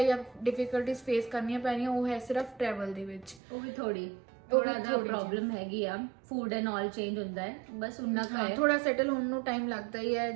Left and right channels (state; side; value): drops out; left; at 3.4 s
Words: ਜਾਂ ਡਿਫਿਕਲਟੀਜ਼ ਫੇਸ ਕਰਨੀਆਂ ਪੈਣੀਆਂ ਉਹ ਹੈ ਸਿਰਫ ਟਰੈਵਲ ਦੇ ਵਿੱਚ। ਉਹ ਵੀ ਥੋੜਾ ਜਿਹਾ ਪ੍ਰੋਬਲਮ ਹੈਗੀ ਆ, ਫੂਡ ਐਂਡ ਆਲ ਚੇਂਜ ਹੁੰਦਾ ਹੈ, ਬਸ ਉਨਾ ਕੁ ਹੈ। ਥੋੜਾ ਸੈਟਲ ਹੋਣ ਨੂੰ ਟਾਈਮ ਲੱਗਦਾ ਹੀ ਹੈ।